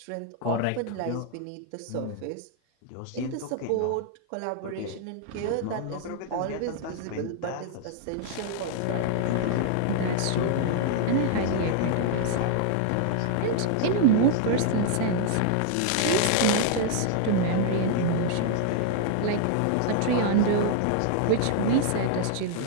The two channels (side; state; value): both; different; correlation 0.00